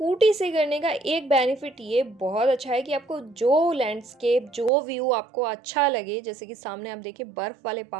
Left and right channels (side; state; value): left; drops out; at 4.7 s